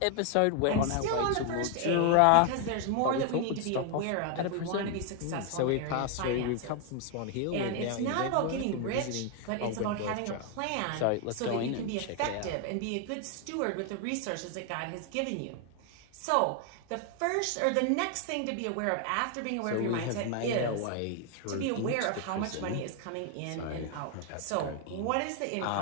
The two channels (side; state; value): both; different; correlation 0.00